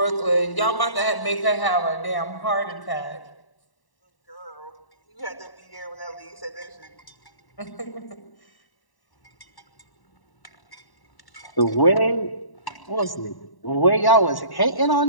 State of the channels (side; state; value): right; late; 1.1 ms